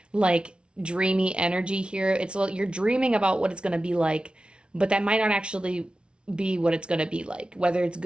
like dreamy energy here. It's you're dreaming about what it's going to be like, but that might not actually be what it's going to be like. Whether it's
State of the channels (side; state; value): left; late; 0.057 ms